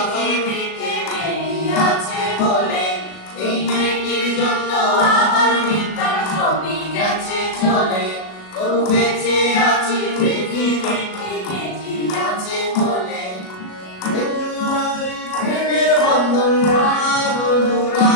মেয়ে আছে বলে। এই মেয়েটির জন্য আমার পিতা সঙ্গী গেছে চলে, তবু বেঁচে আছি পৃথিবীতে মেয়ে আছে বলে। প্রেমের বন্ধন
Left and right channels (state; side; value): late; right; 37 ms